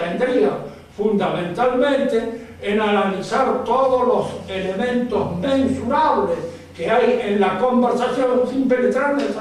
fundamentalmente en analizar todos los elementos mensurables que hay en la conversación sin penetrar en el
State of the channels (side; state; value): both; identical; correlation 1.00